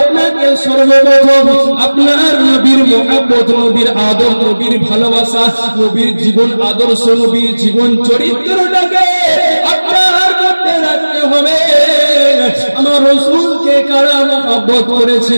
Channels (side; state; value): both; inverted; correlation -1.00